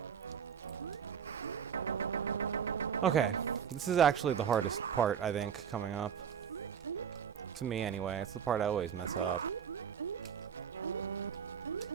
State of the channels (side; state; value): left; quieter; 7.9 dB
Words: Okay. This is actually the hardest part, I think, coming up. To me, anyway. It's the part I always mess up.